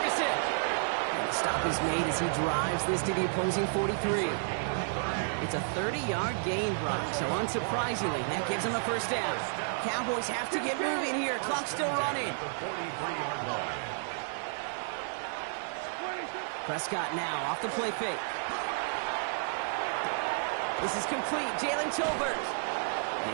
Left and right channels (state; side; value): silent; left; digital silence